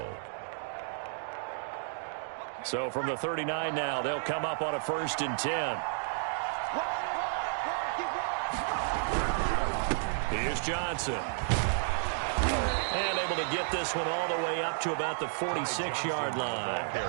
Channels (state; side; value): silent; left; digital silence